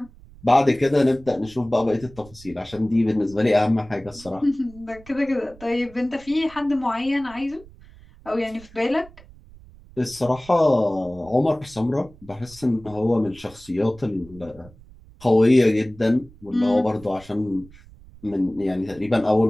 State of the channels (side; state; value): right; noise; rumble, 22 dB below the sound